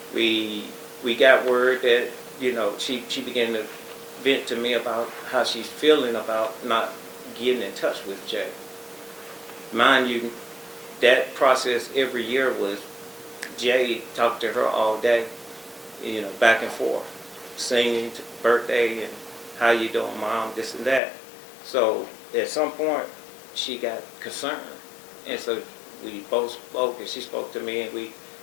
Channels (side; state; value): right; drops out; at 21.0 s